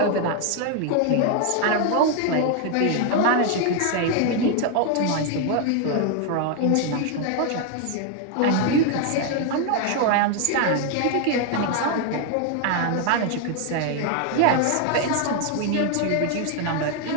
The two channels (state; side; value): different; both; correlation 0.01